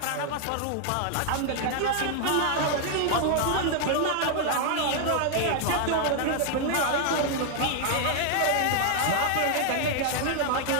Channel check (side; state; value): both; different; correlation 0.00